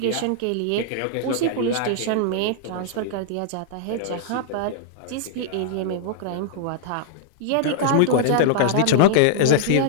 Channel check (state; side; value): different; both; correlation -0.01